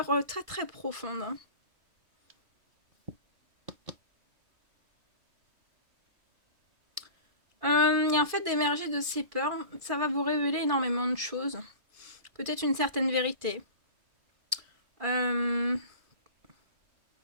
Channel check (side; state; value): left; late; 2.4 ms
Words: très très profondes. Et en fait, d'émerger de ces peurs, ça va vous révéler énormément de choses. Peut-être une certaine vérité.